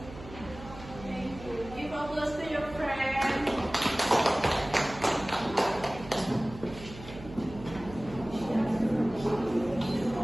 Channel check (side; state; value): right; noise; hum, 15 dB below the sound